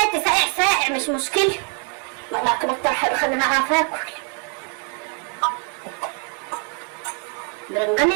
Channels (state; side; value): quieter; left; 36.0 dB